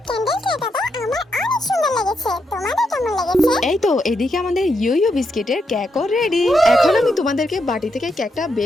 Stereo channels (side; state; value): both; normal; correlation 0.81